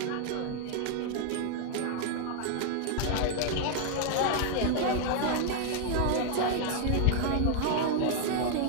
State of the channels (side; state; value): both; different; correlation 0.00